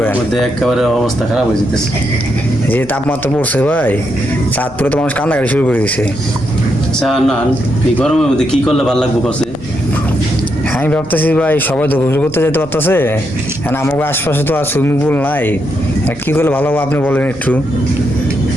মধ্যে একেবারে অবস্থা খারাপ হয়ে যেতেছে। যে তাপমাত্রা পড়ছে ভাই, চাঁদপুরে তো মানুষ কান্নাকাটি শুরু করে দিছে। আচ্ছা না, এই গরমের মধ্যে কি করলে ভালো লাগবে করছে? আমি ভাবতেছি ভাই, সবাই তো গোসল করতে যেতে পারতেছে, এখন আমাকে আশপাশে তো আর সুইমিং পুল নাই। কি করলে ভালো হবে আপনি বলেন একটু।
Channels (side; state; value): right; noise; hum, 24 dB below the sound